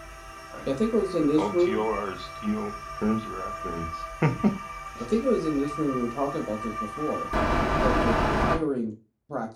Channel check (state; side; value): identical; both; correlation 1.00